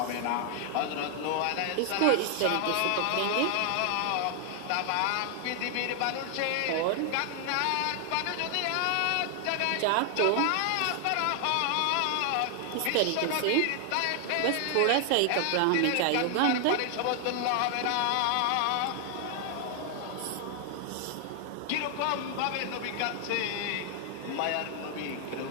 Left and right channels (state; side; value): different; both; correlation 0.00